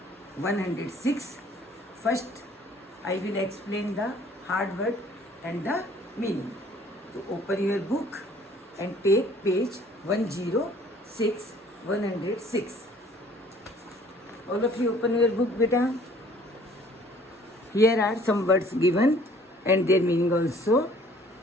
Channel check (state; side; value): normal; both; correlation 0.55